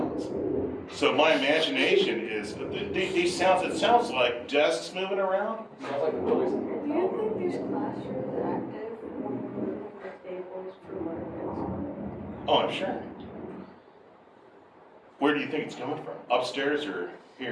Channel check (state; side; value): identical; both; correlation 1.00